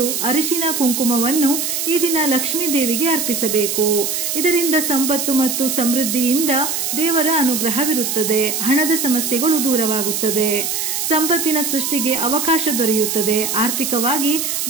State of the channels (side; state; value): right; noise; hiss, 1 dB below the sound